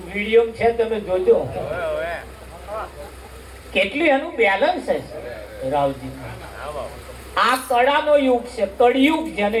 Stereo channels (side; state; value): both; identical; correlation 1.00